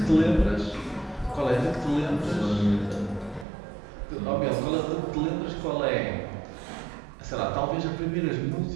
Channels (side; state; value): left; drops out; at 3.5 s